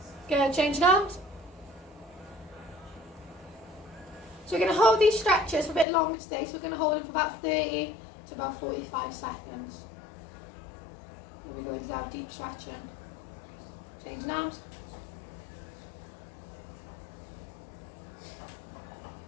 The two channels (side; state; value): right; drops out; at 5.9 s